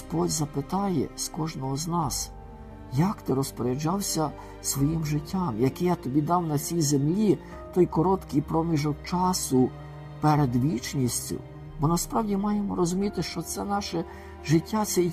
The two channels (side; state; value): both; identical; correlation 1.00